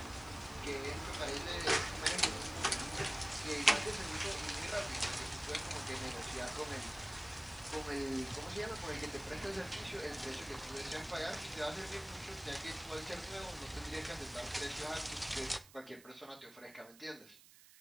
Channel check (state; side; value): noise; right; hiss, 21 dB below the sound